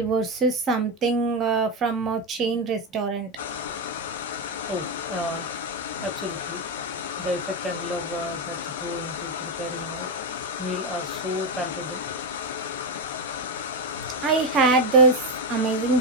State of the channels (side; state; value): both; normal; correlation 0.07